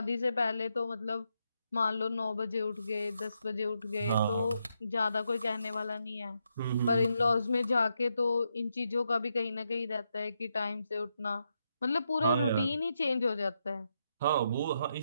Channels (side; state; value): both; inverted; correlation -0.81